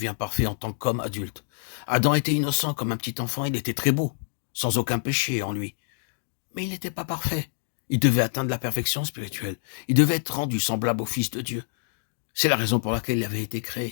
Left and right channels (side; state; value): right; silent; digital silence